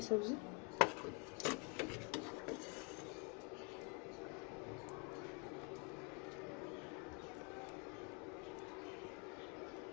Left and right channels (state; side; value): quieter; right; 34.7 dB